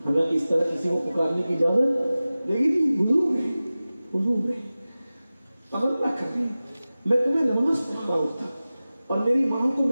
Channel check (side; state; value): both; inverted; correlation -0.97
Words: حالانکہ اس طرح کسی کو پکارنے کی اجازت دے گی نہیں، حضور ہے عمل نہ کر رہے ہیں، میں تمہیں نماز پڑھا رہا ہوتا اور میری ماں کو